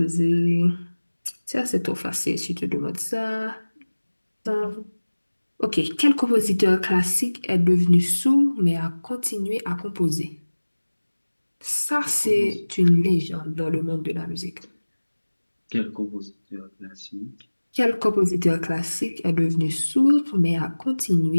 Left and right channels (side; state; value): both; inverted; correlation -1.00